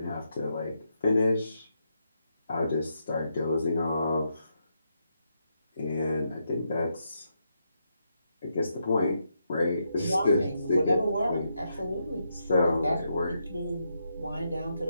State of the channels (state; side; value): inverted; both; correlation -0.81